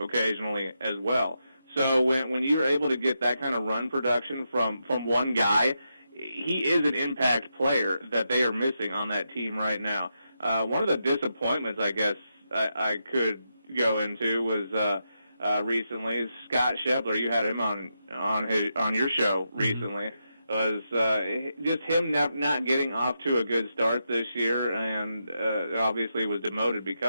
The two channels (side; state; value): both; inverted; correlation -0.85